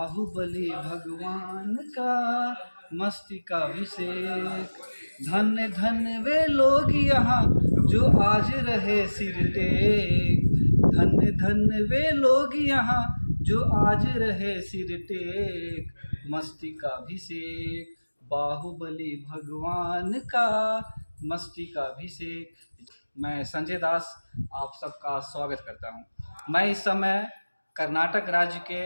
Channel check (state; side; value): inverted; both; correlation -1.00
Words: भगवान का मस्तकाभिषेक। धन्य धन्य वे लोग यहाँ जो आज रहे सिर टेक, धन्य धन्य वे लोग यहाँ जो आज रहे सिर टेक। मस्तकाभिषेक, बाहुबली भगवान का मस्तकाभिषेक। मैं संजय दास आप सबका स्वागत करता हूं। मैं इस समय कर्नाटक राज्य के